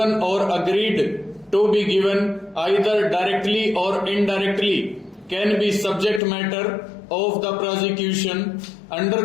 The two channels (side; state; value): right; drops out; at 6.2 s